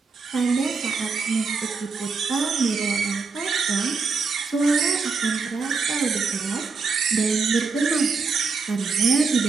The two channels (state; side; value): quieter; left; 4.7 dB